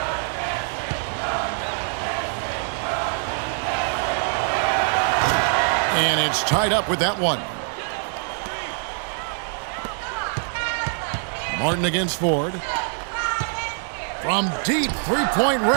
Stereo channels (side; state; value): left; silent; 58 dB below the other